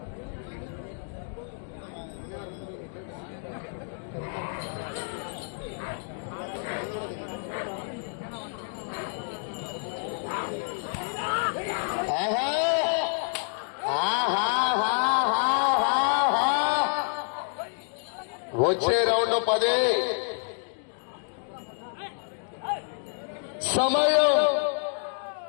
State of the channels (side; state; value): right; silent; 59 dB below the other